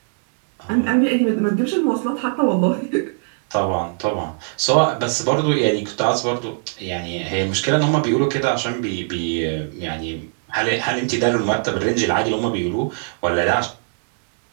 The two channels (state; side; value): silent; left; 63 dB below the other